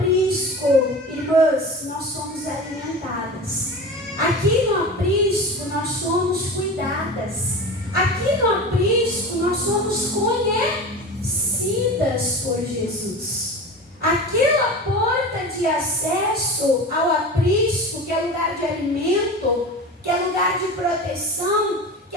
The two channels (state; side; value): normal; both; correlation 0.31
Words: irmãs, nós somos alimentadas. Aqui no aprisco, nós somos cuidadas. Aqui no aprisco, nós somos conhecidas por Jesus. Aquela porta acesso ao aprisco, que é lugar de alimento, que é lugar de proteção, que